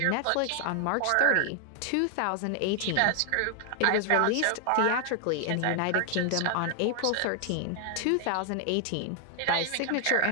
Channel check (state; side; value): different; both; correlation 0.00